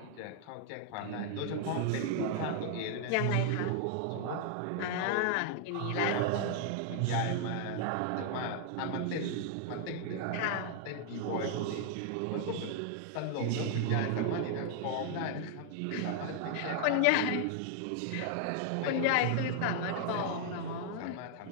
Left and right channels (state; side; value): different; both; correlation 0.00